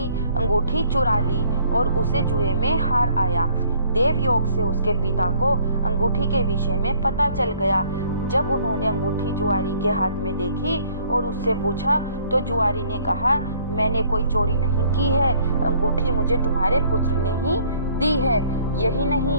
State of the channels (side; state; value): both; inverted; correlation -0.59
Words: अंगूठी चुरा ली और उसे जुए में हार आया। देव योग से उसके पिता को अंगूठी के विषय में पता चल गया। जब उन्होंने अंगूठी जुआरी के हाथ में देखी और उससे पूछा तो जुआरी ने कहा, मैंने कोई चोरी नहीं की है, अंगूठी मुझे तुम्हारे पुत्र ने ही दी है। यही